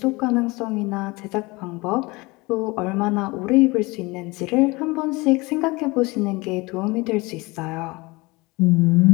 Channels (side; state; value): right; quieter; 23.8 dB